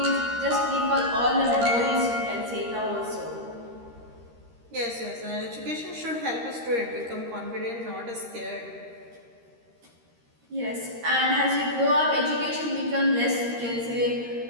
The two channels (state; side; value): late; left; 13 ms